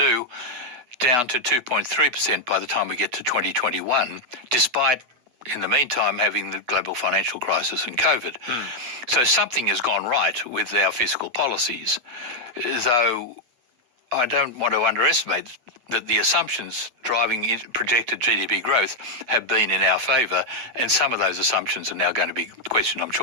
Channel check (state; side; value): late; left; 8.2 ms